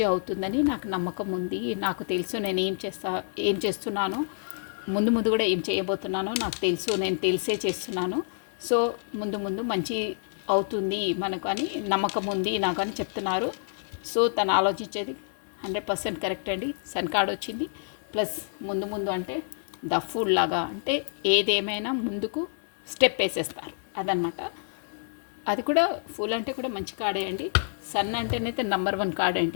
అవుతుందని నాకు నమ్మకం ఉంది. నాకు తెలుసు నేను ఏం చేస్తున్నానో, ముందు ముందు కూడా ఏం చేయబోతున్నానో నాకు తెలుసు. నేను తెలిసే చేస్తున్నాను. సో ముందు ముందు మంచి అవుతుంది మనకు అని నమ్మకం ఉంది నాకు అని చెప్తున్నారు. సో తను ఆలోచించేది 100% కరెక్ట్ అండి. సన్ కార్డ్ వచ్చింది, ప్లస్ ముందు ముందు అంటే ద ఫుల్ లాగా, అంటే ఏదేమైనా ముందుకు స్టెప్ వేసేస్తారు అదనమాట. అది కూడా ఫుల్ అంటే కూడా మంచి కార్డే అండి. సన్ అంటేనైతే నెంబర్ 1 కార్డ్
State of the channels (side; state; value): right; silent; 59 dB below the other